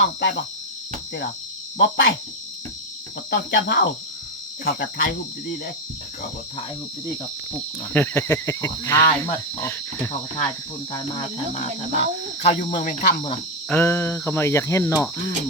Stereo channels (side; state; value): both; normal; correlation 0.08